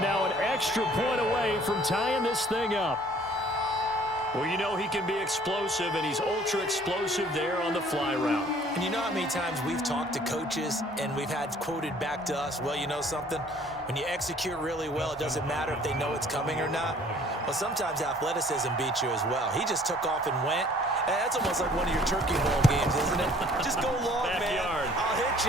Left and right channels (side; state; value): both; normal; correlation 0.56